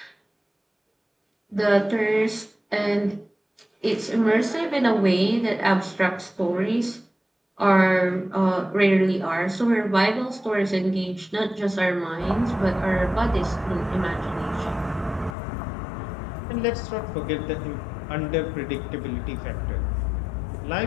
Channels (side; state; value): right; drops out; at 15.4 s